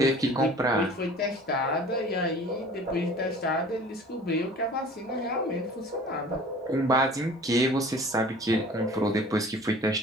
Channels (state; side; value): normal; both; correlation 0.46